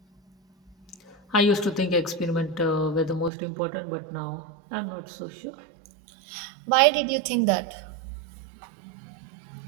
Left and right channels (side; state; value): left; drops out; at 3.3 s